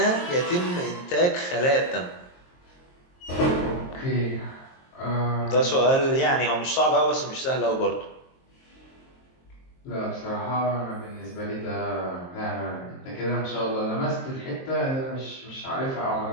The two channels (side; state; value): right; late; 23 ms